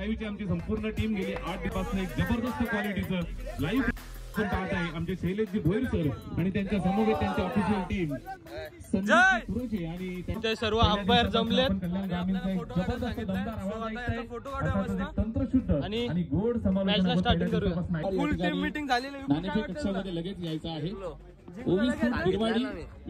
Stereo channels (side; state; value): both; identical; correlation 1.00